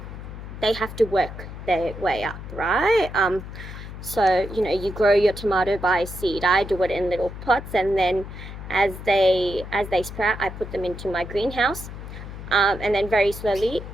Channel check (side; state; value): left; noise; hum, 11 dB below the sound